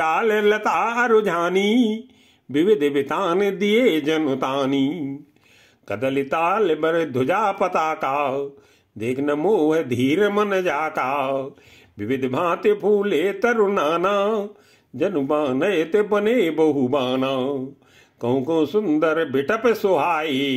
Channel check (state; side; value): identical; both; correlation 1.00